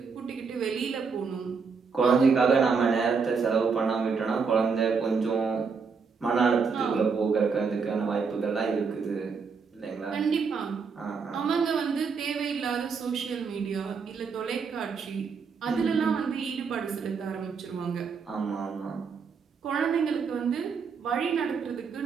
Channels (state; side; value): quieter; left; 5.4 dB